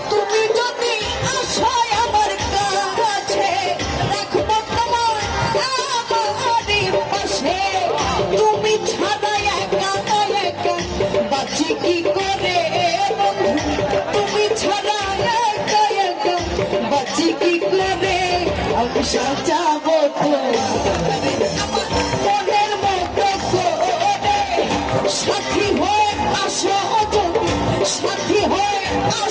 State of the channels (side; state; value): both; identical; correlation 1.00